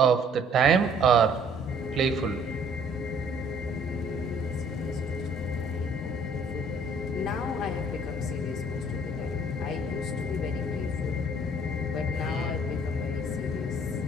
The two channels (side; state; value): both; normal; correlation 0.58